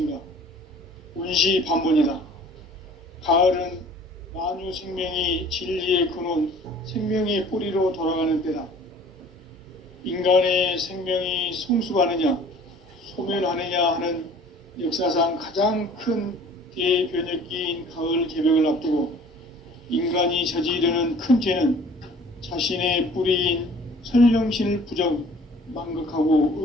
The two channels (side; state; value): both; normal; correlation 0.50